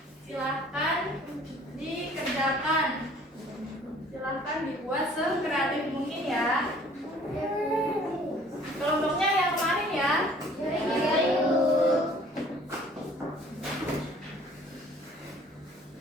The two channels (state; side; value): normal; both; correlation 0.54